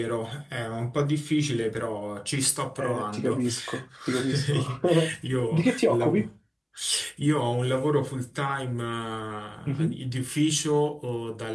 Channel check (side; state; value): both; identical; correlation 1.00